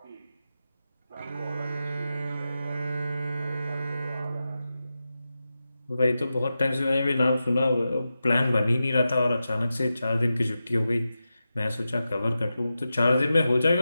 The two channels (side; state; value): both; inverted; correlation -0.91